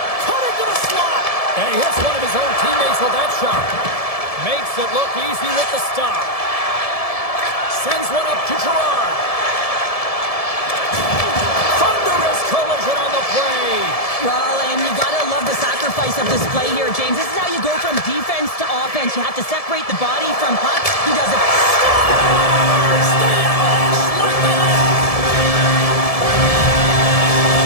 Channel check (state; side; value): late; right; 1.7 ms